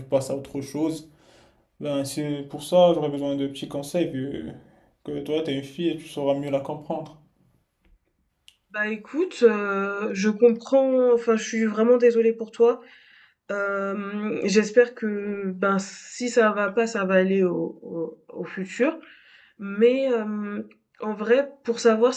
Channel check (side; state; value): both; identical; correlation 1.00